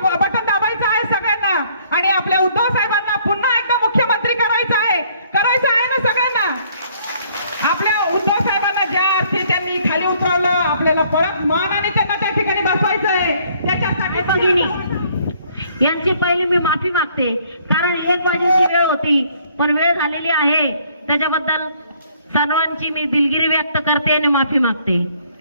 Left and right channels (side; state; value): both; inverted; correlation -0.63